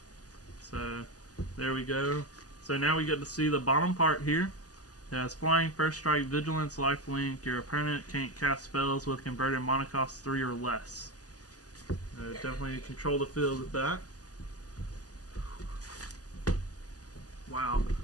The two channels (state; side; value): late; right; 0.67 ms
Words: So, there we go. So now we get to see the bottom part here. It has flying, first strike, vigilance, lifelink. Your opponent can't cast spells with converted mana cost 3 or less. Definitely control the field with that. Wow.